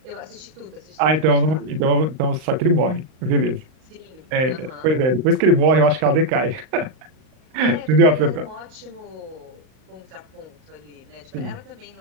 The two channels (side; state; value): left; late; 38 ms